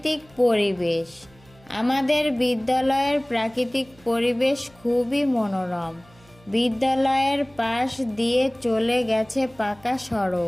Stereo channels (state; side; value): noise; right; hum, 27 dB below the sound